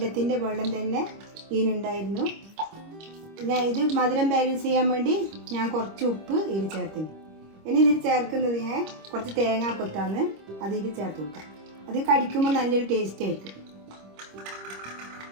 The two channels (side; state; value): left; late; 25 ms